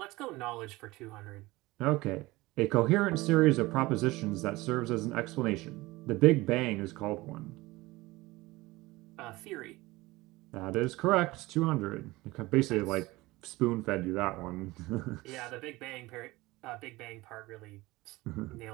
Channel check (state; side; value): quieter; left; 20.3 dB